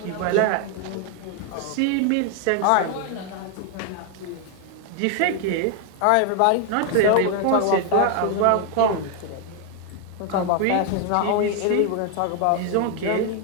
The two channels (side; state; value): both; different; correlation 0.00